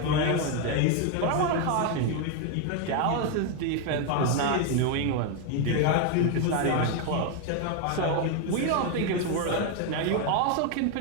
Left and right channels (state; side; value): different; both; correlation 0.01